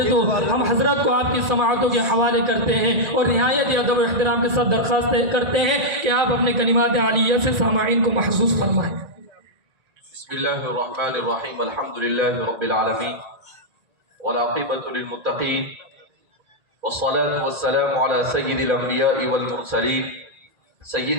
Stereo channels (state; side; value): late; left; 1.9 ms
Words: تو۔ ہم حضرت کو آپ کی سماعتوں کے حوالے کرتے ہیں اور نہایت ادب و احترام کے ساتھ درخواست کرتے ہیں کہ آپ اپنے کلمات عالیہ سے سامعین کو محسوس فرمائیں۔ بسم اللہ الرحمن الرحیم، الحمد للہ رب العالمین والعاقبۃ للمتقین والصلاة والسلام على سید الانبیاء والمرسلین